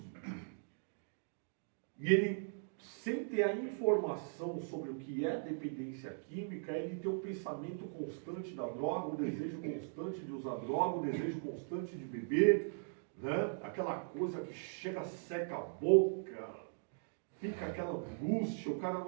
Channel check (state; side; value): silent; left; digital silence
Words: e ele, sem ter a informação sobre o que é dependência química, ele tem um pensamento constante da droga, um desejo constante de usar droga, um desejo constante de beber, né? Aquela coisa que chega, seca a boca, fica aquela angústia, o cara